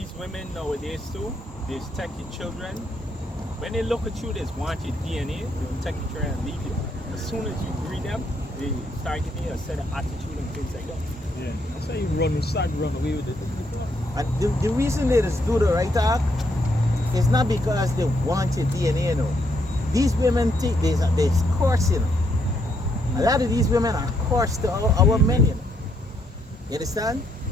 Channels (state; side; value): normal; both; correlation 0.74